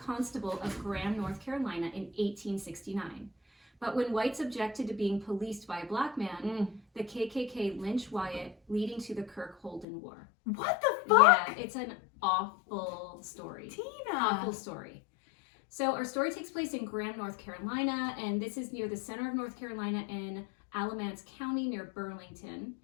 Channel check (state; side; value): drops out; right; at 9.9 s